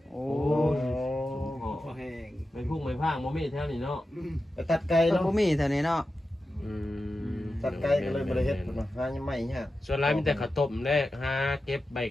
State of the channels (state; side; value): normal; both; correlation 0.92